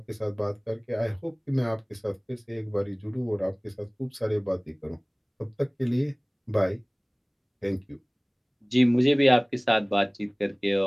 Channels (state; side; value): identical; both; correlation 1.00